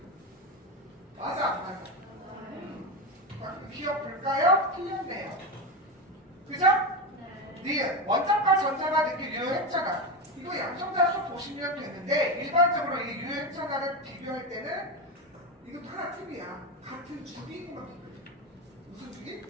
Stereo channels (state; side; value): normal; both; correlation 0.16